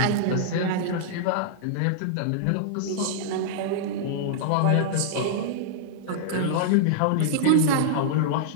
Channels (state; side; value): different; both; correlation -0.02